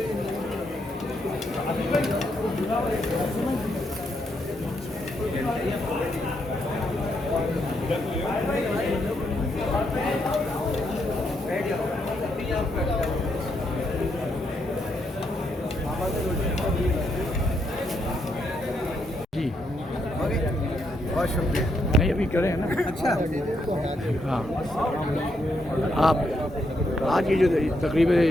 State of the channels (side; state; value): both; normal; correlation 0.78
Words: जी बहुत शुक्रिया। नहीं अभी करें ना। अच्छा, हाँ आप आज ये जो तकरीब